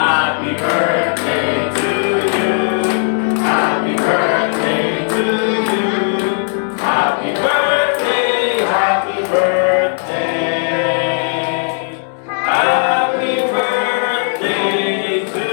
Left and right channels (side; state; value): right; silent; digital silence